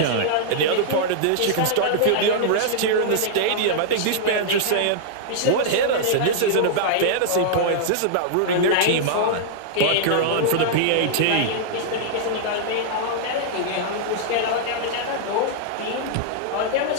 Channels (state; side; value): different; both; correlation -0.01